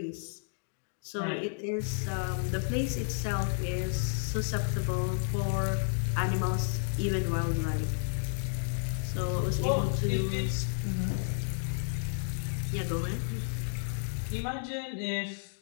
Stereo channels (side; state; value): right; silent; digital silence